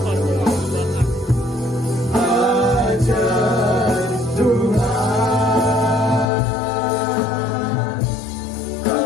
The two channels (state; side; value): drops out; right; at 6.2 s